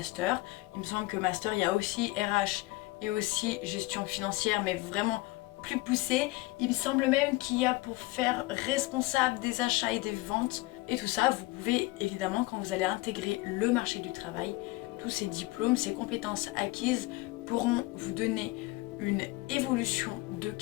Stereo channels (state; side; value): quieter; right; 21.0 dB